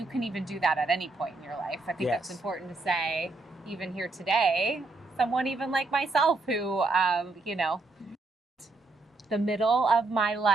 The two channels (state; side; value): quieter; left; 3.3 dB